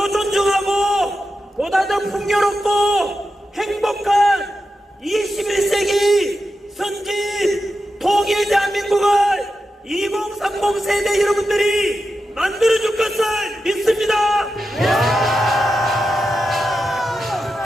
존중하고 보다 더 풍요롭고 행복한 21세기 선진 통일 대한민국을 2030 세대 여러분들이 만들어줄 것을 믿습니다.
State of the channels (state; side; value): normal; both; correlation 0.90